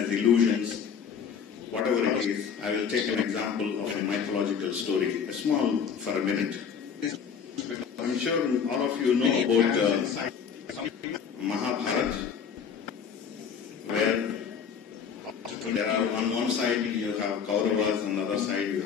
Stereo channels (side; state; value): right; quieter; 6.9 dB